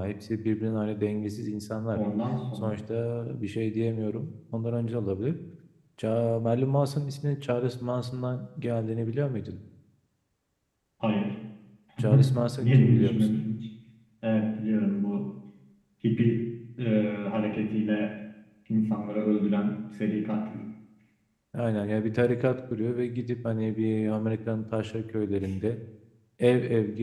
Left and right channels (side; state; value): both; identical; correlation 1.00